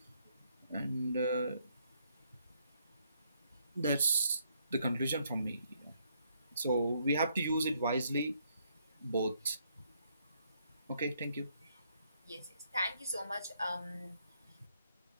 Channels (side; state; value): both; inverted; correlation -0.71